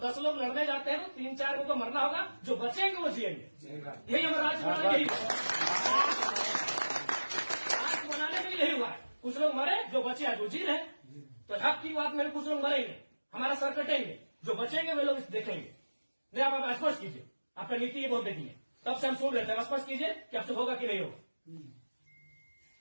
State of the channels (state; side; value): inverted; both; correlation -1.00